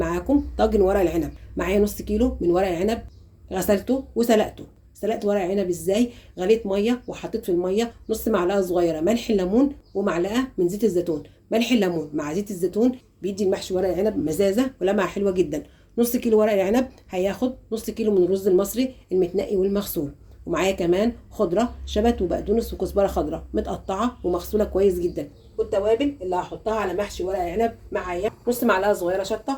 طاجن ورق العنب. معايا نص كيلو من ورق العنب، غسلته وسلقته. سلقت ورق العنب ازاي؟ غليت ميه وحطيت في الميه نص معلقه صغيره ملح الليمون ومعلقه من زيت الزيتون. ملح الليمون مع زيت الزيتون بيدي المحشي ورق العنب مزازه ولمعه حلوه جدا. نص كيلو ورق العنب هياخد نص كيلو من الرز المصري المتنقي والمغسول. ومعايا كمان خضره شبت وبقدونس وكزبره خضراء متقطعه ومغسوله كويس جدا. والتوابل اللي هحطها على محشي ورق العنب معايا نص معلقه صغيره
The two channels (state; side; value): identical; both; correlation 1.00